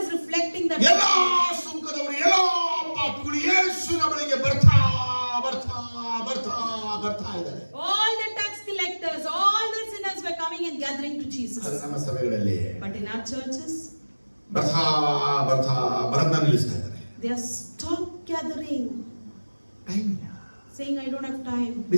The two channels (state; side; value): inverted; both; correlation -1.00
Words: is reflecting that ಎಲ್ಲ ಸುಂಕದವರು ಎಲ್ಲ ಪಾಪಿಗಳು ಯೇಸುವಿನ ಬಳಿಗೆ ಬರ್ತಾ ಇದ್ದಾರೆ. all the tax collectors, all the sinners were coming and gathering to ಅದು Jesus. ನಮ್ಮ ಸಭೆಗಳಲ್ಲಿ But in our churches, ಬರದ್ನ ನಿಲ್ಲಿಸ್ತಾ ಇದ್ದಾರೆ. they are stopped gathering, time ಇಲ್ಲ. saying, "I don't have time."